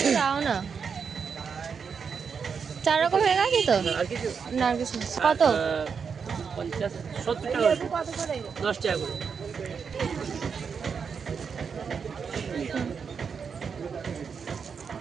দাও না। 4 রকম হয়ে গেছে তো? আর কিছু না আর কিছু না। কত? 50 70 টাকা 10 টাকা করে।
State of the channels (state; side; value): quieter; left; 6.1 dB